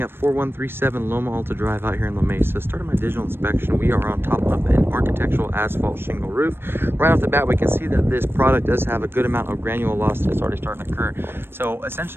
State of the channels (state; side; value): late; left; 0.11 ms